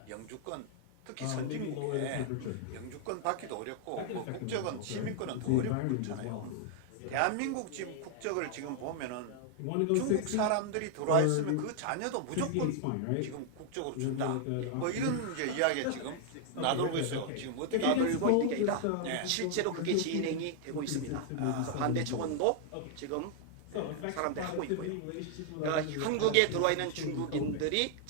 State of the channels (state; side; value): different; both; correlation 0.00